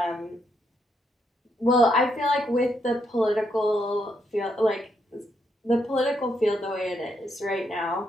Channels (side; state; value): both; normal; correlation 0.77